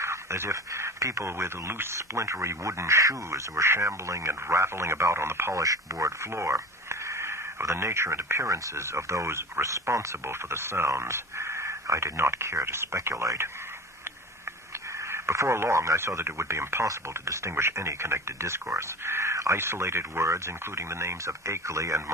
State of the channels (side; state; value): both; normal; correlation 0.34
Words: as if people with loose, splintery wooden shoes were shambling and rattling about on the polished board floor. Of the nature and appearances of those responsible for the sounds, I did not care to speculate. Before long, I saw that it would be impossible to distinguish any connected discourse. Isolated words, including the names of Akeley and